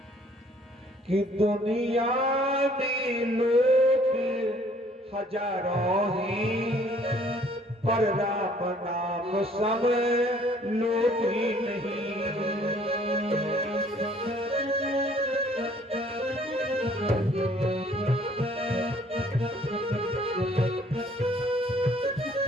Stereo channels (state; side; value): normal; both; correlation 0.59